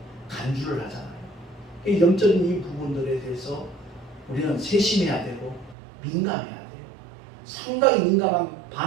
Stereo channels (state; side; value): drops out; left; at 5.8 s